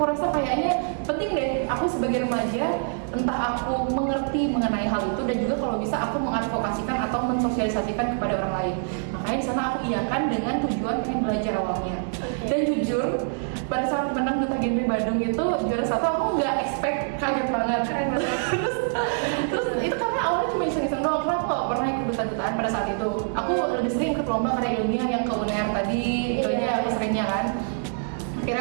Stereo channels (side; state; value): left; silent; 60 dB below the other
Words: rasa kayaknya penting deh aku sebagai remaja, entah aku mengerti mengenai hal itu, dan juga kalau bisa aku mengadvokasikan atau mensosialisasikan kepada orang lain. Makanya di sana aku iyakan dengan tujuan pengen belajar awalnya. Dan jujur pada saat menang duta genre Bandung itu juara 1, aku nggak expect, kaget banget. terus itu karena awalnya cuma iseng-iseng doang, karena aku nggak pernah ikut duta-dutaan pada saat itu. Aku lebih sering ikut lomba karya ilmiah yang ke UNER tadi, itu aja aku seringnya kan.